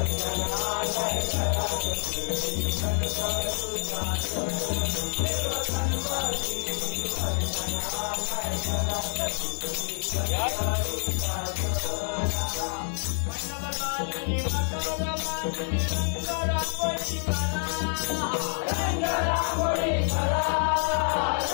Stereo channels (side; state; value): right; silent; 60 dB below the other